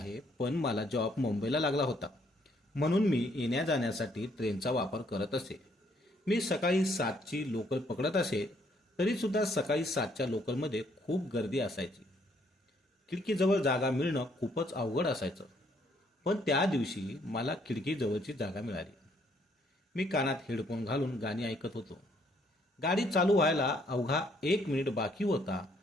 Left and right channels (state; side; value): normal; both; correlation 0.68